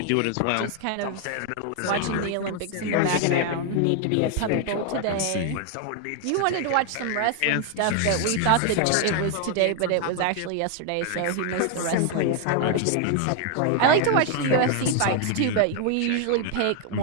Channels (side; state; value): both; different; correlation 0.00